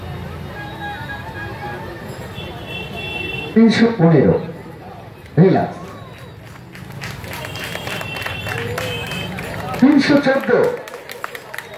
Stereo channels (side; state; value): both; identical; correlation 1.00